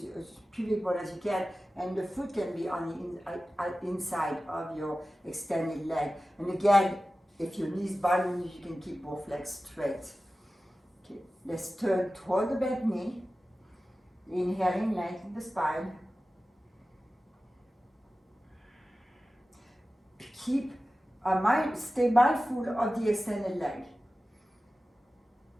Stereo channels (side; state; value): both; normal; correlation 0.95